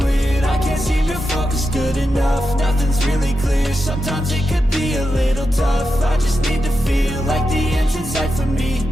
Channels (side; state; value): both; normal; correlation 0.88